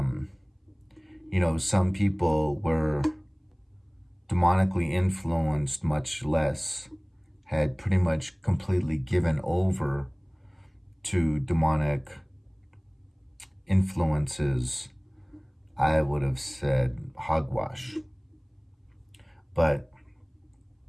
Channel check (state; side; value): identical; both; correlation 1.00